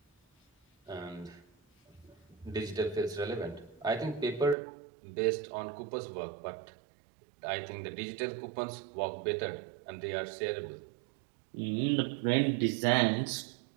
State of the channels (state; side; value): drops out; left; at 4.5 s